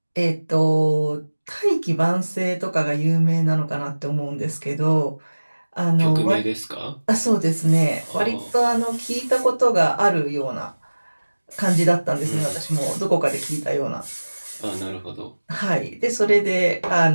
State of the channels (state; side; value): inverted; both; correlation -1.00